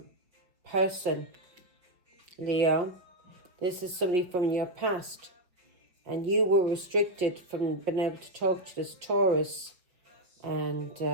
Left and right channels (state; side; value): late; left; 5.6 ms